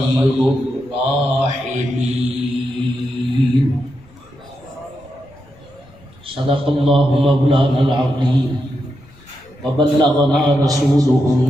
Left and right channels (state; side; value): noise; left; rumble, 27 dB below the sound